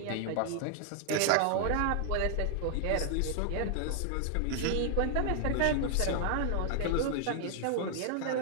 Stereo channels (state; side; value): different; both; correlation 0.00